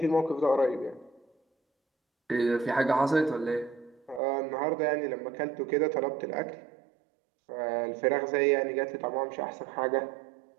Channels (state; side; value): drops out; left; at 4.2 s